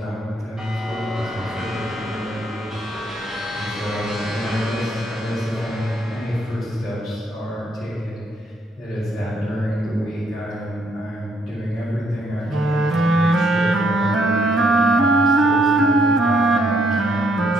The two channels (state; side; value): normal; both; correlation 0.71